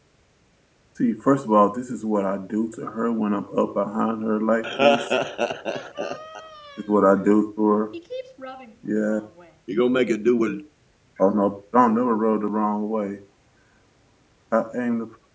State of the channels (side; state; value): both; identical; correlation 1.00